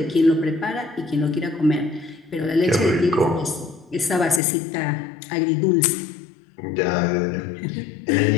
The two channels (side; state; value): right; drops out; at 4.4 s